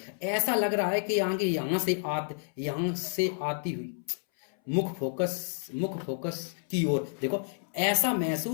ऐसा लग रहा है कि यहां से आती हुई मुख फोकस की ओर। देखो ऐसा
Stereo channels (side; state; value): right; silent; 58 dB below the other